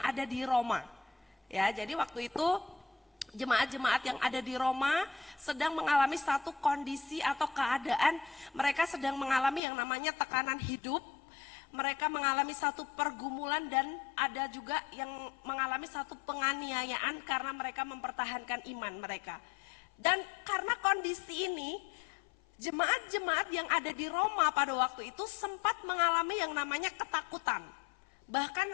ada di Roma. Ya, jadi waktu itu jemaat-jemaat yang ada di Roma sedang mengalami satu kondisi atau keadaan, mereka sedang mengalami yang namanya tekanan hidup. Mereka mengalami satu pergumulan dan ada juga yang mengalami satu penganiayaan karena mereka mempertahankan iman mereka. Dan karena kondisi ini, jemaat-jemaat yang ada di Roma pada waktu itu sempat mengalami yang namanya ketakutan. Bahkan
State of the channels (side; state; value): right; drops out; at 9.6 s